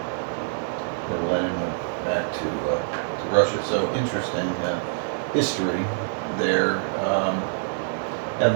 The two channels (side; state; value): left; silent; digital silence